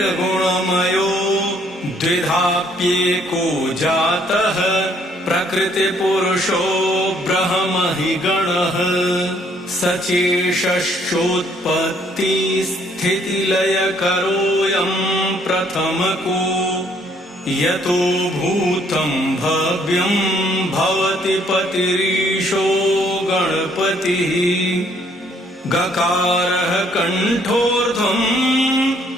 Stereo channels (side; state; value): both; normal; correlation 0.65